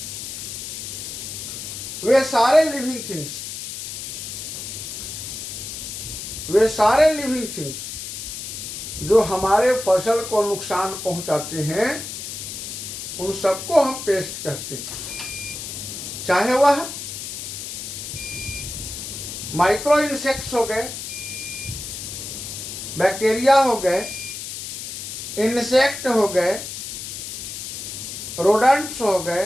वे सारे लिविंग थिंग्स जो हमारे फसल को नुकसान पहुंचाते हैं, उन सबको हम पेस्ट कहते हैं। चाहे वह माइक्रो इंसेक्ट्स हो गए, बैक्टीरिया हो गए, इंसेक्ट हो गए, रोडेंट्स हो गए,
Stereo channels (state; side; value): noise; left; hiss, 7 dB below the sound